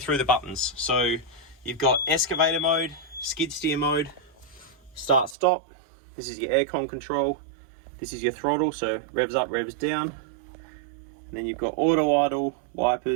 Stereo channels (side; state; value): left; drops out; at 5.4 s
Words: the buttons. So, you've got excavator mode, skid steer mode, start stop. This is your aircon control. This is your throttle, so revs up, revs down. And then you've got auto idle,